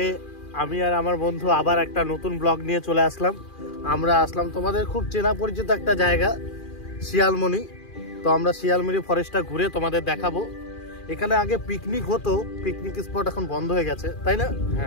আমি আর আমার বন্ধু আবার একটা নতুন ব্লগ নিয়ে চলে আসলাম। আমরা আসলাম তোমাদের খুব চেনা পরিচিত একটা জায়গা শিয়ালমণি। তো আমরা শিয়ালমণি ফরেস্টটা ঘুরে তোমাদের দেখাবো। এখানে আগে পিকনিক হতো, পিকনিক স্পট এখন বন্ধ হয়ে গেছে, তাই না?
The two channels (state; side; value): late; right; 2.4 ms